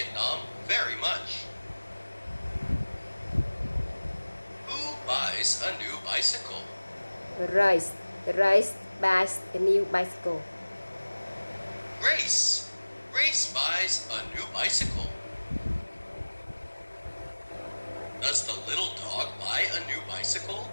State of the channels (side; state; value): both; inverted; correlation -1.00